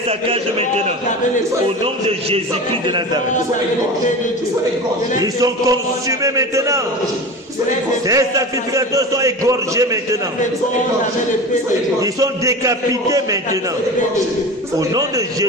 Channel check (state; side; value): normal; both; correlation 0.31